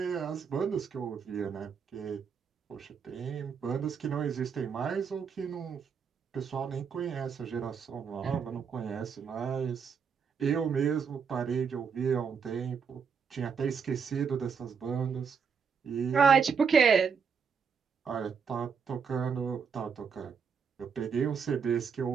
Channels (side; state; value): left; quieter; 6.3 dB